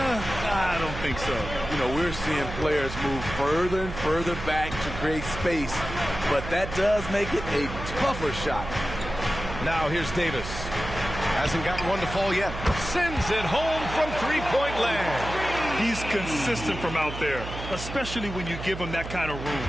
don't think so. You know, we're seeing players move further and further back to create space, but that does make it a tougher shot. Now here's Davis. Hasn't gotten one to fall yet. Sends it home from three-point land. He's consistent from out there, especially when you give him that kind of room.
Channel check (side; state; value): right; noise; hum, 8 dB below the sound